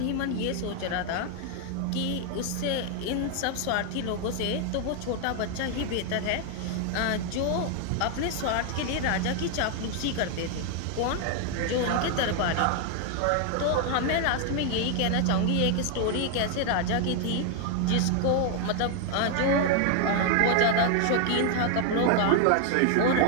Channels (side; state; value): both; different; correlation 0.00